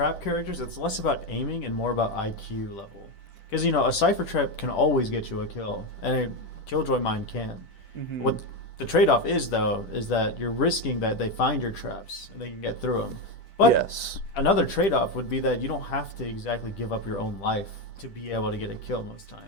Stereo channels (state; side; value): late; right; 10 ms